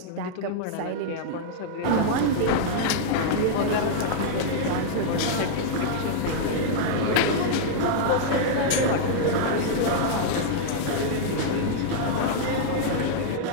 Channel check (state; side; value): different; both; correlation -0.01